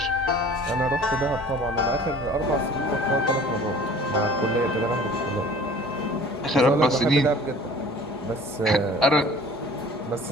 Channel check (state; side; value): normal; both; correlation 0.47